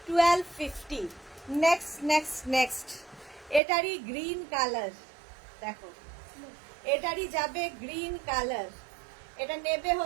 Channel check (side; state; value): left; drops out; at 3.6 s